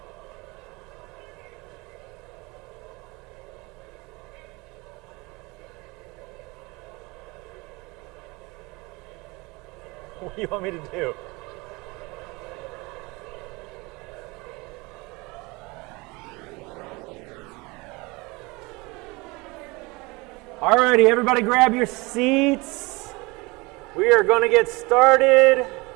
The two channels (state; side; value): quieter; left; 24.9 dB